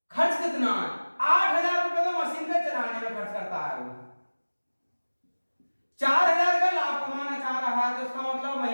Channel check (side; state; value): both; inverted; correlation -1.00